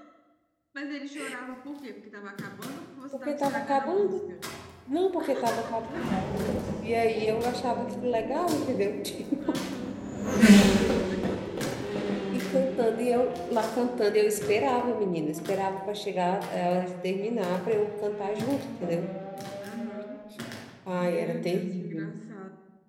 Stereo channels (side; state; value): both; identical; correlation 1.00